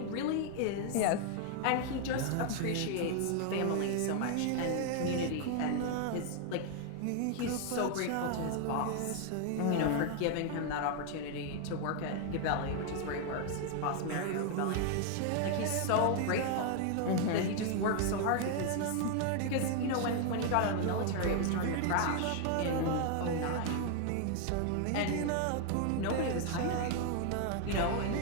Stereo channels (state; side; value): different; both; correlation 0.00